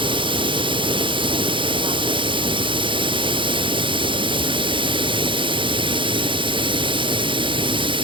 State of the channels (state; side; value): late; left; 0.24 ms